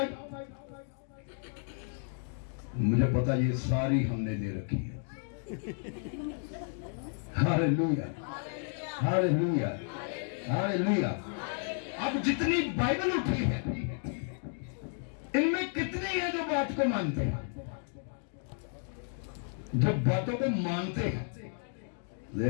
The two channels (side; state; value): right; silent; 56 dB below the other